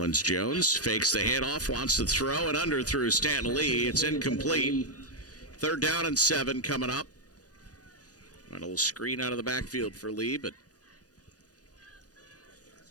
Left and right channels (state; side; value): late; right; 0.68 ms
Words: Jones fakes the handoff, wants to throw it under through Stanton Lee. It's incomplete. 3rd down and 7 coming up. A little screen out of the backfield for Lee, but